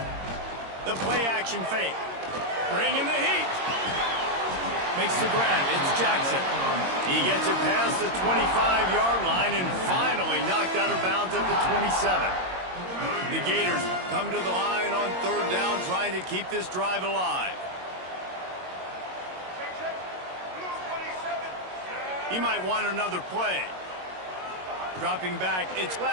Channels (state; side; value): late; left; 22 ms